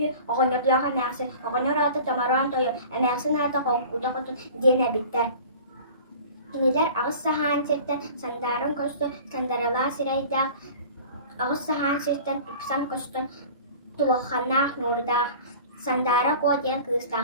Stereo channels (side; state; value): both; inverted; correlation -0.41